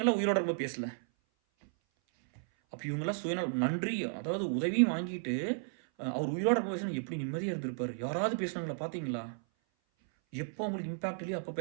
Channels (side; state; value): left; silent; 55 dB below the other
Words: உயிரோட இருக்கும்போது பேசல? அப்போ இவங்கெல்லாம் சுயநலம் நன்றி, அதாவது உதவியும் வாங்கிட்டு அவர் உயிரோட இருக்கும் பேசணும் எப்படி நிம்மதியாக இருந்திருப்பாரு. யாராவது பேசுனாங்களா பார்த்தீங்களா? எப்போ உங்களுக்கு இம்பாக்ட் இல்லையோ அப்போ